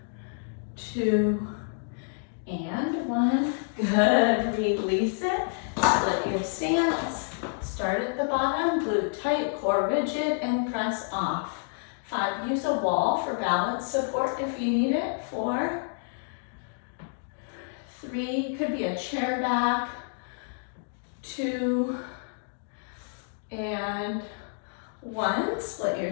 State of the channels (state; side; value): silent; right; digital silence